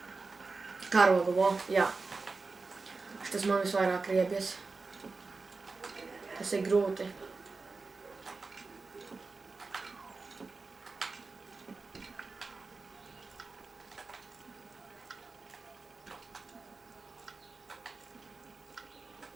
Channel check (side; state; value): left; quieter; 4.1 dB